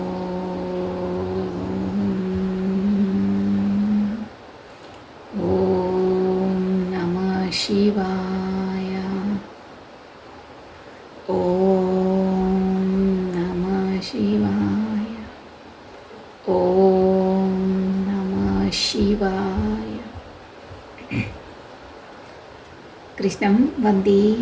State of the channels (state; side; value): identical; both; correlation 1.00